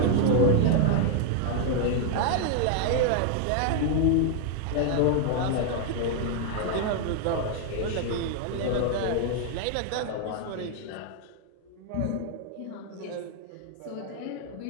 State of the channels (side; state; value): both; different; correlation 0.00